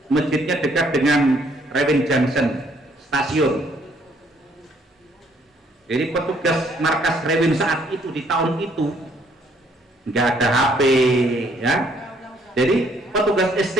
masjidnya dekat dengan Rewin Junction stasiun. Jadi petugas markas Rewin saat itu di tahun itu nggak ada HP ya. Jadi petugas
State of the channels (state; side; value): normal; both; correlation 0.66